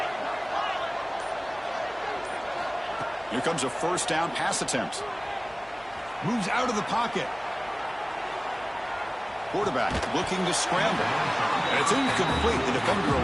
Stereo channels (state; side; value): noise; left; hum, 27 dB below the sound